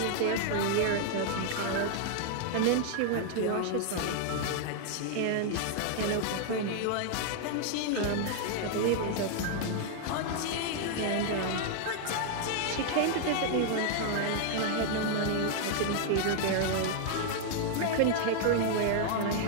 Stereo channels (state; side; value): different; both; correlation 0.00